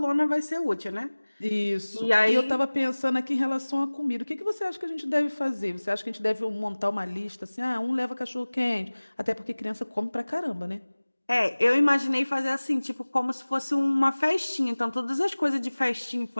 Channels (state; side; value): inverted; both; correlation -1.00